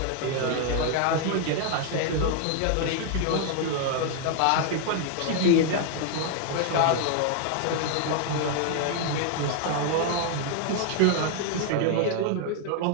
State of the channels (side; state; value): both; different; correlation 0.00